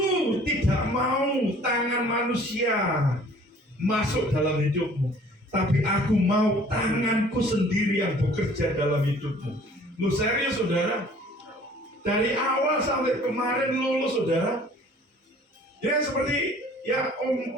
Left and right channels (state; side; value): normal; both; correlation 0.52